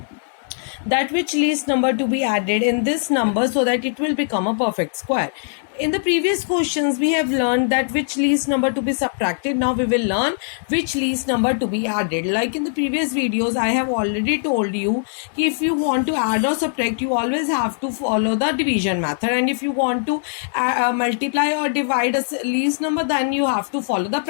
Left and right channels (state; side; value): silent; right; digital silence